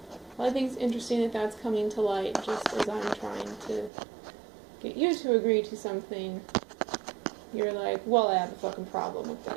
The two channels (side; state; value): left; drops out; at 3.9 s